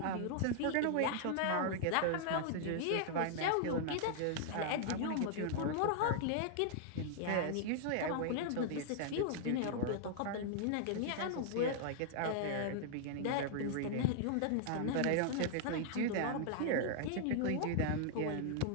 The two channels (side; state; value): both; different; correlation -0.01